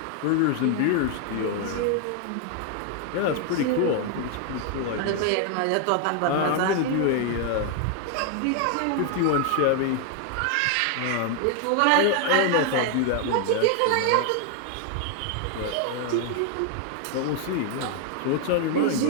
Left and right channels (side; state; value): both; different; correlation 0.00